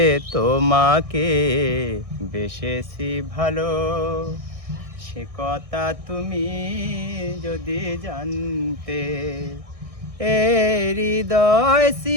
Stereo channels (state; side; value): late; left; 1.6 ms